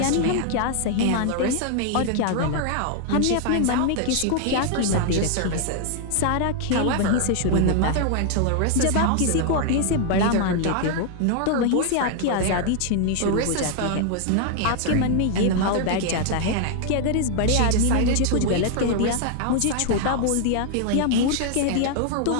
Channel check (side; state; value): both; different; correlation 0.00